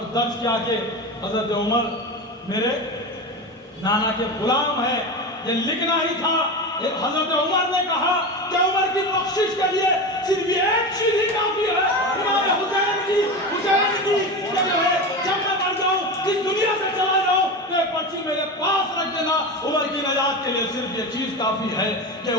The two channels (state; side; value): normal; both; correlation 0.23